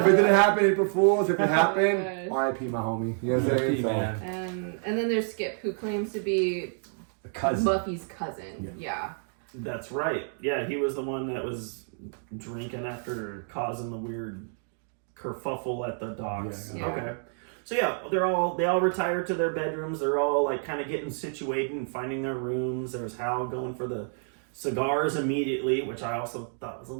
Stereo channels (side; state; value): left; silent; 59 dB below the other